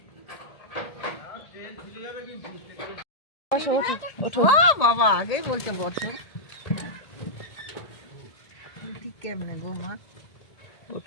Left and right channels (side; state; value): right; late; 1.8 ms